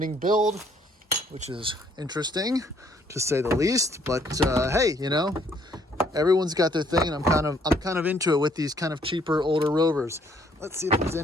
build, which is interesting to say the least. But hey, you know, everyone's got their thing, and I'm kind of into it with these kind of cheaper older Rovers. Let's see if there's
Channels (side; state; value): both; normal; correlation 0.65